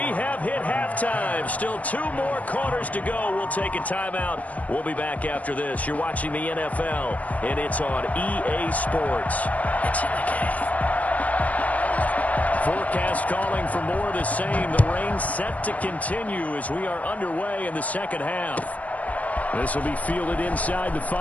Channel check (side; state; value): right; late; 0.070 ms